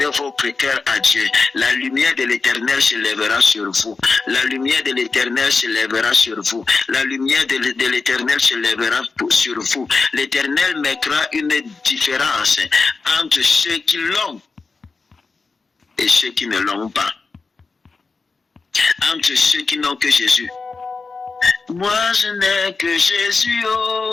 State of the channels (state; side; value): quieter; right; 4.3 dB